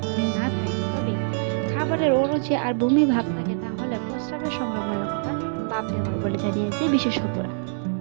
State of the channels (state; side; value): silent; left; 62 dB below the other